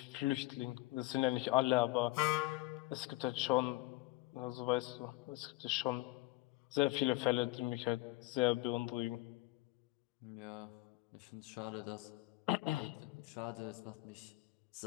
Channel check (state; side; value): quieter; right; 20.2 dB